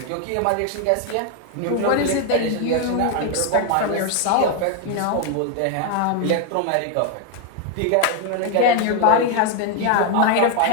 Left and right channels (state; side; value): different; both; correlation 0.01